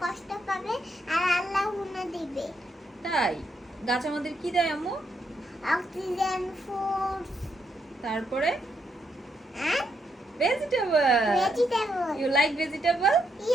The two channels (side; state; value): both; normal; correlation 0.78